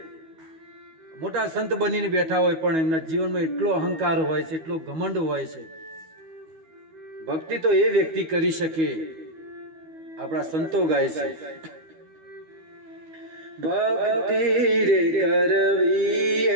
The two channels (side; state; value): left; late; 12 ms